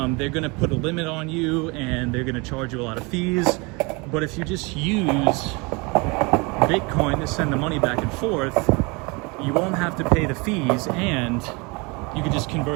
gonna put a limit on you and they're gonna charge you a lot of fees. But if you just use Bitcoin to send the money back and forth, you won't have to pay the fees and you can just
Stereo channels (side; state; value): left; quieter; 27.9 dB